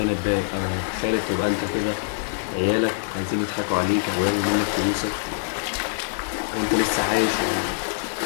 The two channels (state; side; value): silent; right; digital silence